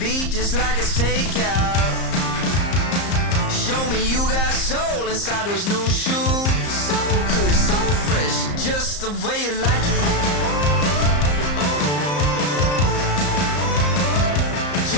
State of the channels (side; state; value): right; late; 34 ms